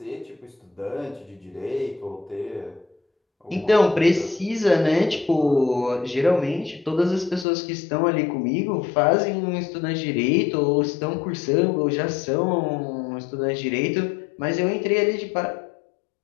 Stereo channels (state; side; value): drops out; right; at 7.5 s